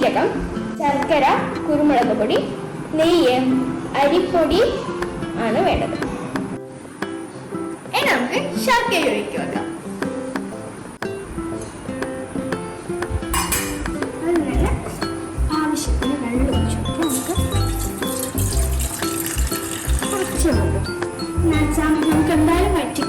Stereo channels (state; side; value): identical; both; correlation 1.00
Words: ശർക്കര, കുരുമുളക് പൊടി, നെയ്യ്, അരിപ്പൊടി ആണ് വേണ്ടത്. ഇനി നമുക്ക് ശർക്കര ഒഴിക്കുക വെക്കാം. അതിനുള്ള ആവശ്യത്തിന് വെള്ളം ഒഴിച്ചു നമുക്ക് കുറച്ച് വെള്ളം നമുക്ക് എന്തായാലും